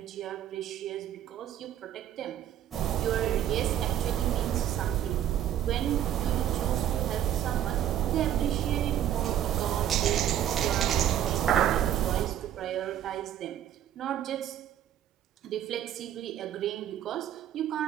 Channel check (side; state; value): left; quieter; 11.1 dB